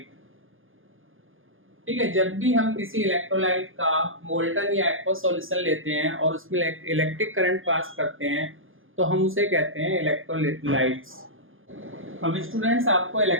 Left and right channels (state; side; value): late; left; 0.59 ms